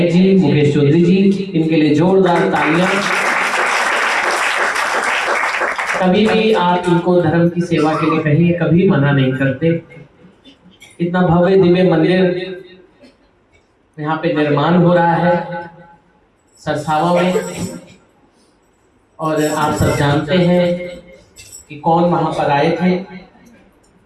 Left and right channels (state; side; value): identical; both; correlation 1.00